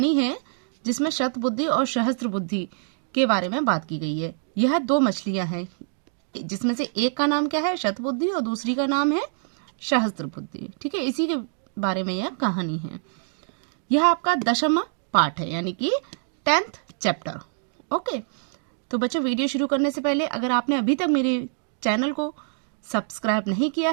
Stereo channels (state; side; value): silent; left; digital silence